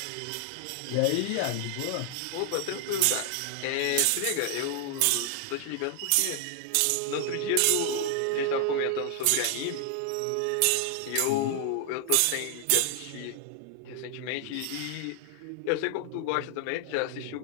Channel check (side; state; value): both; different; correlation 0.00